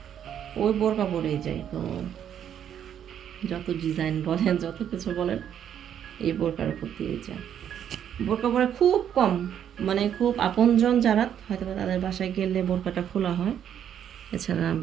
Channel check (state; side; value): quieter; left; 9.4 dB